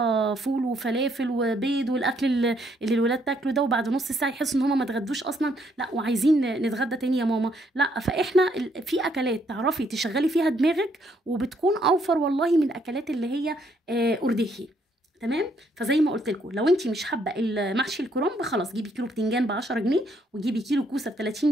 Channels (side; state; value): both; normal; correlation 0.70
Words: فول وفلافل وبيض والاكل اللي الولاد تاكله ده، وبعد نص ساعه يحسوا ان هم ما اتغدوش اصلا، لا وعايزين نتغدى تاني يا ماما. لا، فاحنا في اكلات تعرفي تشغلي فيها دماغك وبتكون اوفر والله من الاكلات اللي هي ارداخي. تمام. فزي ما قلت لكم، لو انت مش حابه المحشي الكرنب خلاص جيبي كيلو بتنجان ب 10 جنيه، وجيبي كيلو كوسه ب